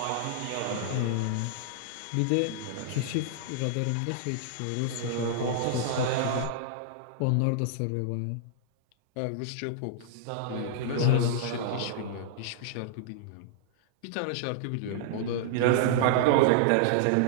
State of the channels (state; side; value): different; both; correlation -0.01